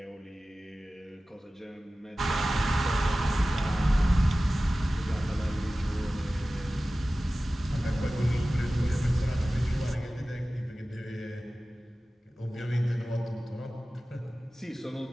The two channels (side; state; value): both; normal; correlation 0.96